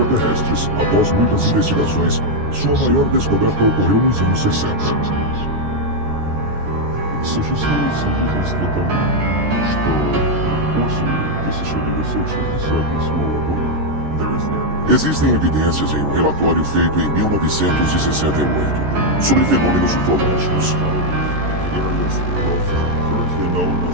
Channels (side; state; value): left; late; 14 ms